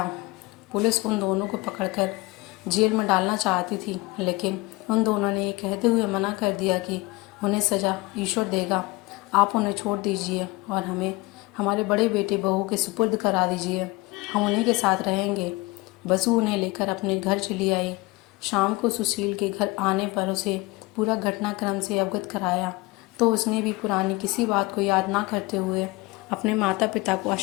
पुलिस उन दोनों को पकड़कर जेल में डालना चाहती थी, लेकिन उन दोनों ने ये कहते हुए मना कर दिया कि उन्हें सज़ा ईश्वर देगा। आप उन्हें छोड़ दीजिए और हमें हमारे बड़े बेटे बहू के सुपुर्द करा दीजिए, हम उन्हीं के साथ रहेंगे। बसु उन्हें लेकर अपने घर चली आई। शाम को सुशील के घर आने पर उसे पूरा घटनाक्रम से अवगत कराया, तो उसने भी पुरानी किसी बात को याद ना करते हुए अपने माता पिता को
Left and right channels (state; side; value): quieter; right; 22.3 dB